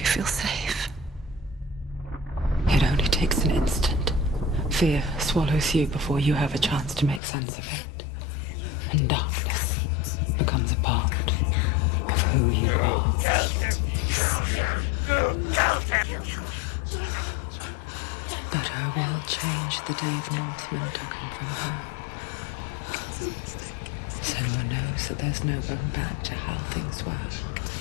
you feel safe. It only takes an instant. Fear swallows you before you have a chance to make sense of it. And darkness becomes a part of who you are. You killed him. But her world changed the day the Northmen took him from her. Senua knows that there's no going back to how things were.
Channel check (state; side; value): drops out; right; at 7.2 s